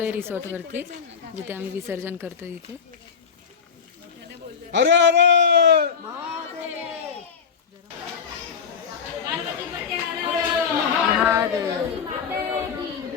रिसॉर्टवरती जिथे आम्ही विसर्जन करतो. इथे अरे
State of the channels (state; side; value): quieter; right; 6.5 dB